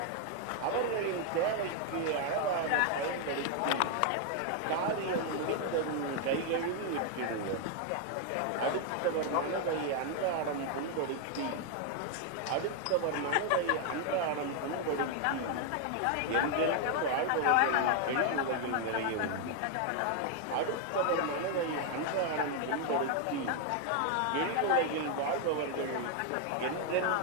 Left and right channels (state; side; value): different; both; correlation 0.00